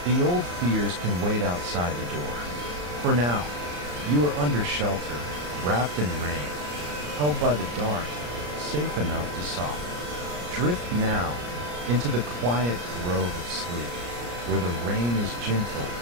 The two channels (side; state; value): left; late; 34 ms